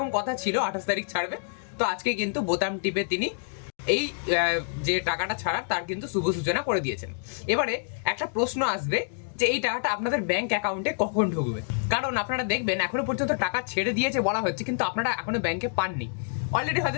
কথা ছিল 28 তারিখ ছাড়বে, তো আজকে কিন্তু বোতাম টিপে তিনি এই যে টাকাটা ছাড়ার তার কিন্তু শুভ সূচনা করে দিয়েছেন। এবারে একটা প্রশ্ন আসবে যে এই টাকাটা আপনাদের ব্যাংক অ্যাকাউন্টে কখন ঢুকবে, কারণ আপনারা দেখবেন এখনো পর্যন্ত টাকা ছেড়ে দিয়েছে বলা হচ্ছে, কিন্তু আপনারা এখনো ব্যাংকে পাননি। অলরেডি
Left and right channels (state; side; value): silent; right; digital silence